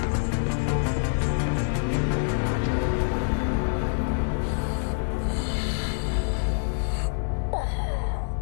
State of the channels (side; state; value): right; silent; digital silence